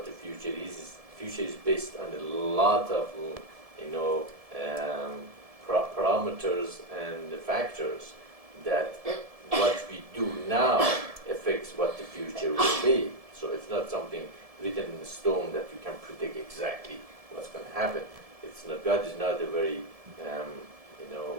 the future is future is based on a lot of parameters and factors that what we do now affects what the future will be. So it's not something written in stone that you can predict exactly what's going to happen. It's not, God is not a very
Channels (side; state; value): left; late; 1.7 ms